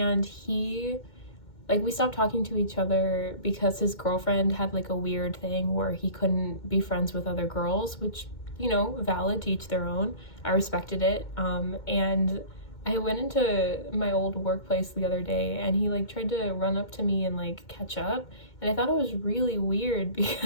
he, like, we stopped talking to each other because his girlfriend had like a weird thing where he couldn't be friends with other girls, which, you know, valid, to each their own. I respected it. And I went into my old workplace the other day, and he like tried to run up to me and like catch up, and I thought it was really weird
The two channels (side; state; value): right; late; 2.2 ms